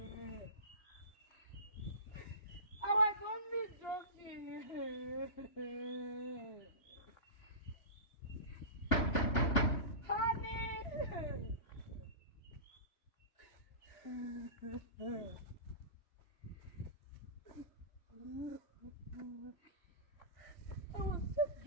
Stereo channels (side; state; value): right; late; 3.0 ms